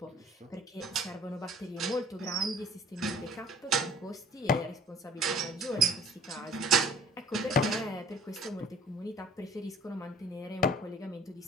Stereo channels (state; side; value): normal; both; correlation 0.52